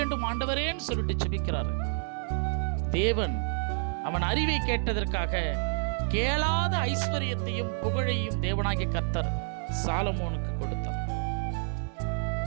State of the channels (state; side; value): silent; left; 59 dB below the other